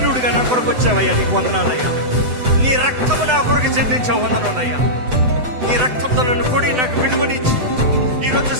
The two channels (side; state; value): left; late; 8.0 ms